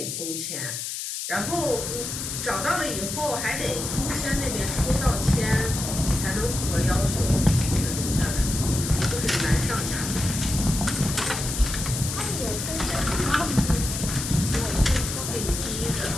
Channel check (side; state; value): left; noise; hiss, 5 dB below the sound